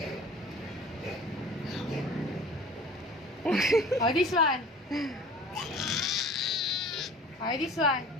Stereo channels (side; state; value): both; normal; correlation 0.44